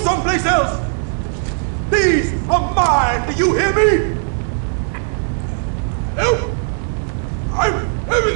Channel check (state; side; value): silent; left; 62 dB below the other